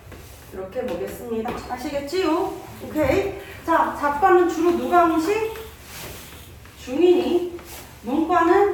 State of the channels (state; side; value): identical; both; correlation 1.00